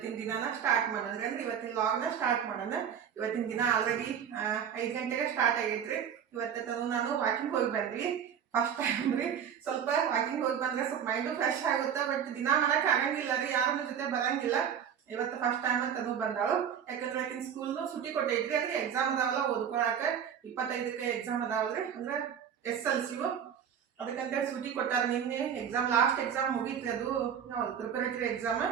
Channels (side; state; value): left; quieter; 8.3 dB